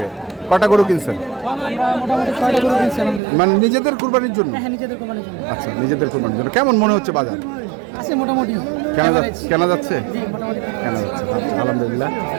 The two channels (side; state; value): left; drops out; at 3.2 s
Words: কটা গরু কিনছেন মানে নিজেদের কুরবানির জন্য আচ্ছা নিজেদের কুরবানির জন্য কেমন মনে হচ্ছে বাজার মোটামুটি কেনা যাচ্ছে আচ্ছা, আলহামদুলিল্লাহ